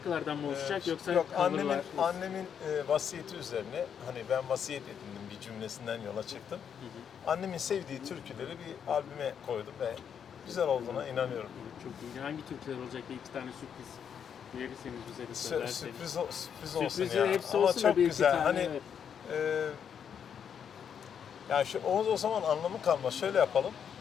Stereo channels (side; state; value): right; quieter; 7.9 dB